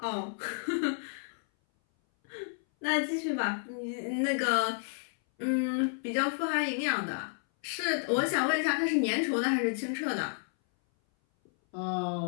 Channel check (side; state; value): right; silent; 57 dB below the other